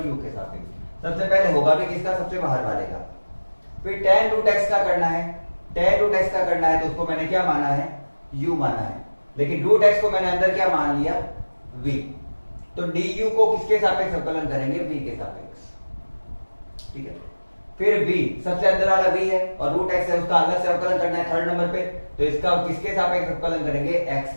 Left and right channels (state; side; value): inverted; both; correlation -1.00